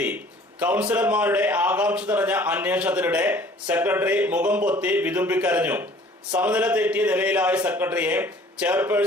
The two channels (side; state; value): both; normal; correlation 0.52